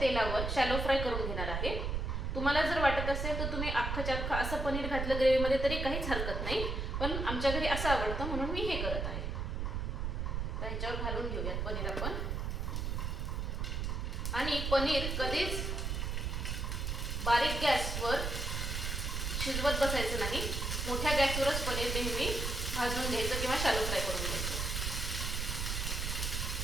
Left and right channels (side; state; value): right; noise; rumble, 2 dB below the sound